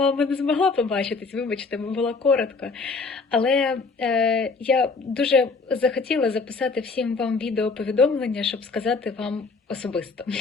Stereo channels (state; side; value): quieter; right; 4.3 dB